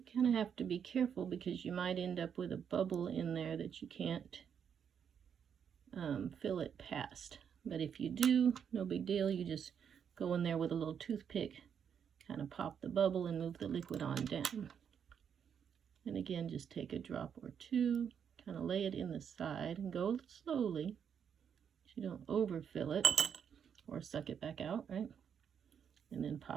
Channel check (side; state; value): left; quieter; 7.8 dB